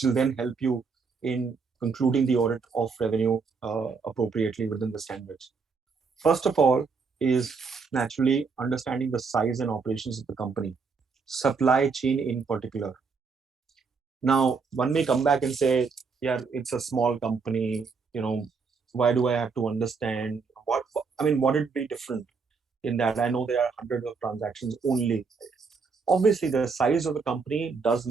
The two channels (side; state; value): left; quieter; 5.0 dB